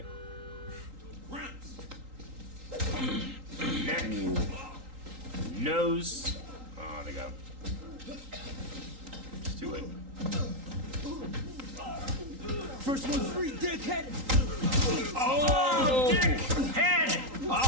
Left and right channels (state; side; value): late; left; 3.8 ms